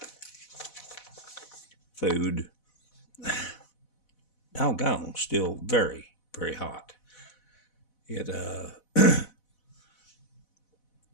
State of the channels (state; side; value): late; right; 4.0 ms